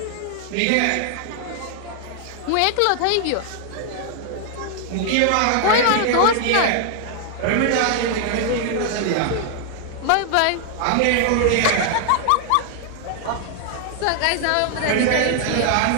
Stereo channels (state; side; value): different; both; correlation 0.00